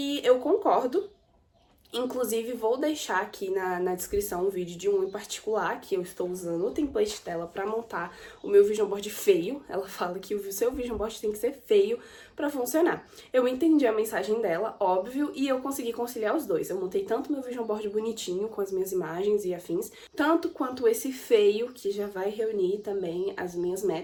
eu concordo. Inclusive, vou deixar aqui na descrição um vídeo de um em particular que eu estou usando o template dela para montar o meu Vision Board feio. Ela fala que o seu Vision Board tem que ser feio para funcionar. Eu entendi a mensagem dela, óbvio, e eu consegui conciliar os dois. Eu montei tanto meu Vision Board bonitinho, com as minhas imagens e afins, tanto quanto esse feio, que já vai reunir também as minhas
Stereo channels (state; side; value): identical; both; correlation 1.00